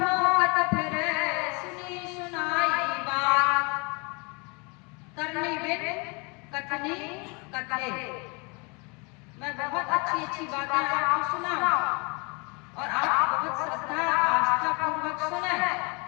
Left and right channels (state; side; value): quieter; right; 31.0 dB